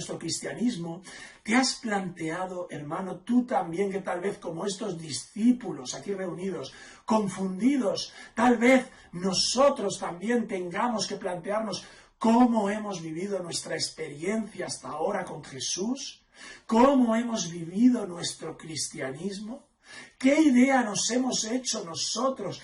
cristianismo? ¿Te has planteado, hermano, tú también, que tal vez como estos discípulos aquí reunidos, confundidos, tal vez nosotros también tengamos que plantearnos cómo hemos vivido nuestra experiencia hasta ahora con Jesús? ¿Cómo hemos vivido nuestro cristianismo? ¿Qué idea nos hemos hecho nosotros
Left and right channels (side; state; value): both; identical; correlation 1.00